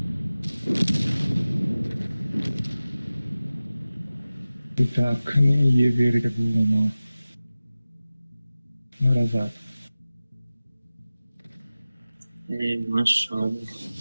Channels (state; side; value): inverted; both; correlation -0.95